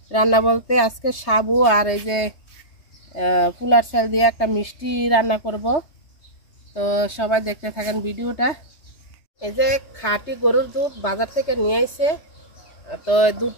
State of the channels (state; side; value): late; right; 3.3 ms